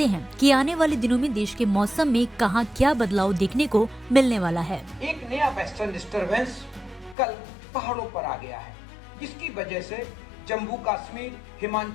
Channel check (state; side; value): drops out; right; at 7.2 s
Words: हैं कि आने वाले दिनों में देश के मौसम में कहाँ क्या बदलाव देखने को मिलने वाला है। एक नया वेस्टर्न डिस्टर्बेंस कल पहाड़ों पर आ गया है, जिसकी वजह से जम्मू कश्मीर,